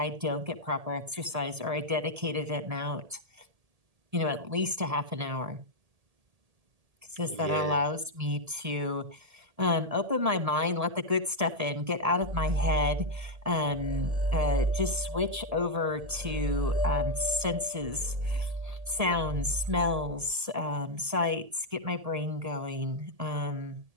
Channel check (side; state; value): left; late; 1.7 ms